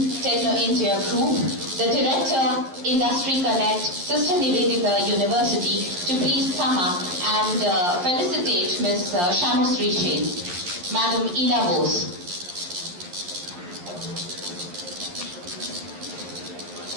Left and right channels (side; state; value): left; late; 11 ms